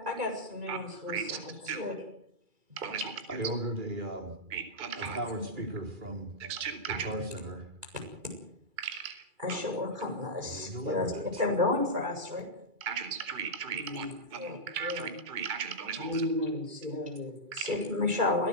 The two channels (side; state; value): left; late; 2.3 ms